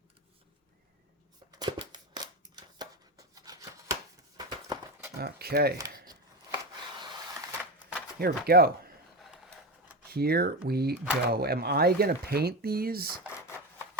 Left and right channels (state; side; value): normal; both; correlation 0.19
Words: Okay. Here we go. Here we go. Am I going to paint these?